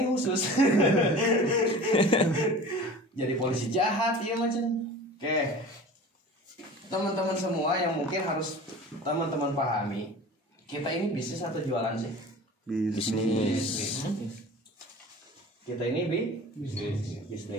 khusus. Jadi polisi jahat ya macam. Oke. Teman-teman semua yang mungkin harus teman-teman pahami, kita ini bisnis atau jualan sih? Bisnis. Kita ini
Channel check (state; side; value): normal; both; correlation 0.39